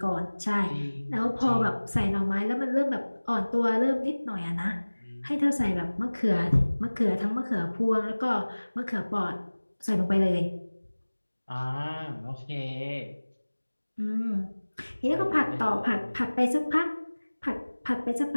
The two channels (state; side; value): inverted; both; correlation -1.00